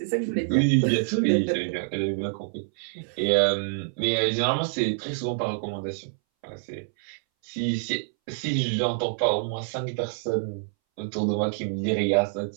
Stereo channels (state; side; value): silent; left; 61 dB below the other